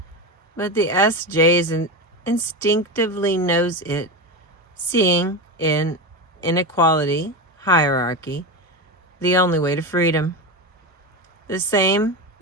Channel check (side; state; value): both; normal; correlation 0.19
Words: But the SJ instinctively knows it, seeing in inequality, hierarchy, the only way to freedom. The same